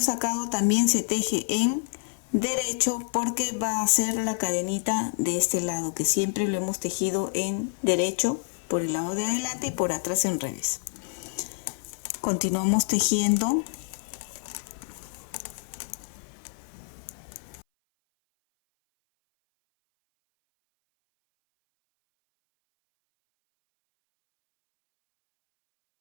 sacado también se teje en derecho porque va a ser la cadenita de este lado, que siempre lo hemos tejido en derecho por el lado de adelante y por atrás en revés. Continuamos tejiendo.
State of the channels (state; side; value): silent; right; 57 dB below the other